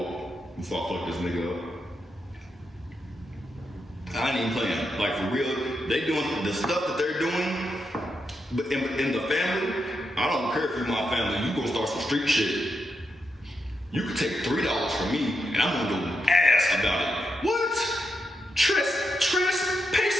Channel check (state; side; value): normal; both; correlation 0.84